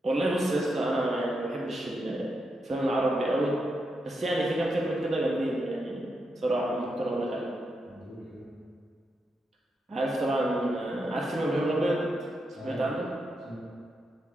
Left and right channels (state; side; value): normal; both; correlation 0.84